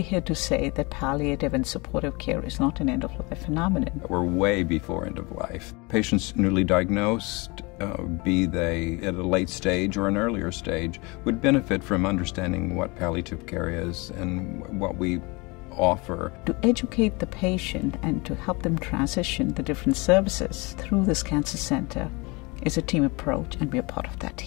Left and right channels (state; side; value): quieter; right; 26.7 dB